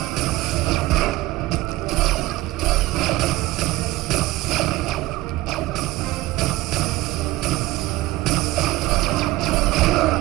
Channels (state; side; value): quieter; left; 18.1 dB